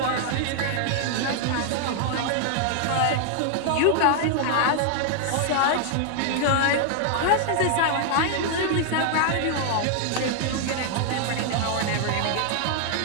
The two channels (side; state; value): both; different; correlation 0.00